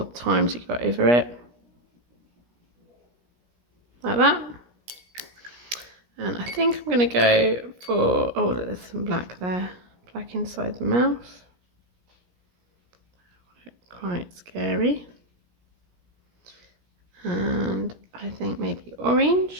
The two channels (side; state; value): left; late; 17 ms